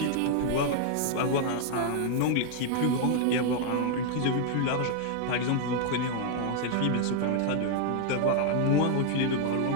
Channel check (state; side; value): different; both; correlation 0.00